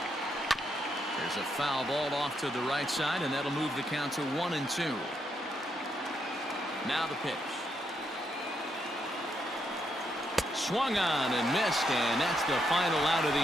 There's a foul ball off to the right side, and that'll move the count to 1-2. Now the pitch. Swung on and missed, and that's the final out of the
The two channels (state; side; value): normal; both; correlation 0.79